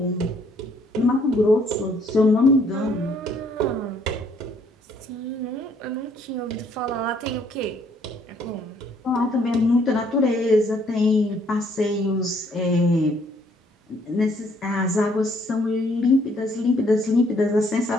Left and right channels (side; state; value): both; normal; correlation 0.65